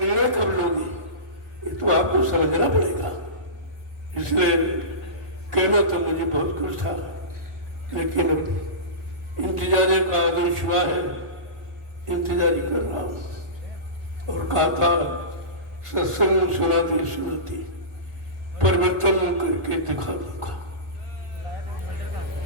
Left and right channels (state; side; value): late; left; 1.4 ms